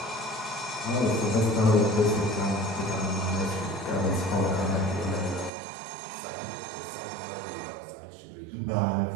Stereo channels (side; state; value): left; drops out; at 5.5 s